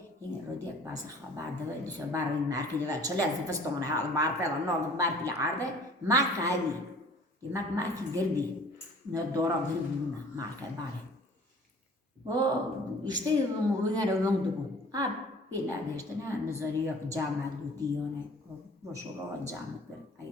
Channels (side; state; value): both; normal; correlation 0.50